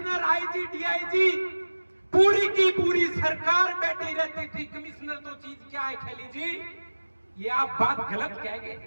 IG, DIG, पूरी की पूरी सरकार बैठी रहती थी। कमिश्नर तो चीज क्या है खैली जी, ये आप बात गलत कह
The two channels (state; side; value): inverted; both; correlation -1.00